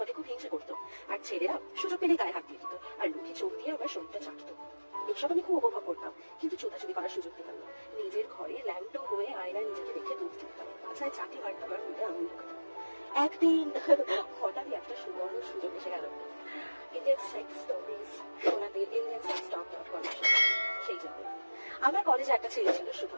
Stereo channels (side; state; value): both; inverted; correlation -1.00